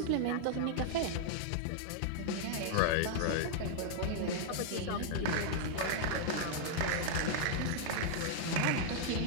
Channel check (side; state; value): both; different; correlation 0.00